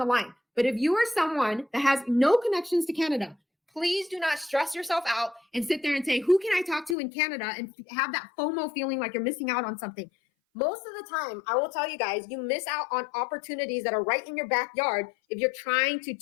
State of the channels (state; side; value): drops out; right; at 7.0 s